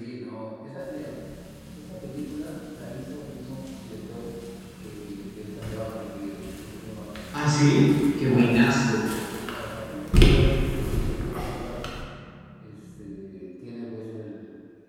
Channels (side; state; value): both; identical; correlation 1.00